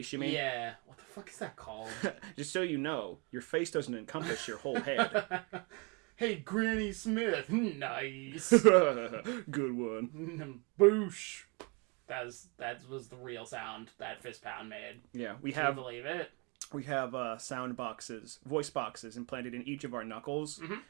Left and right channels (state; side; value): quieter; left; 31.8 dB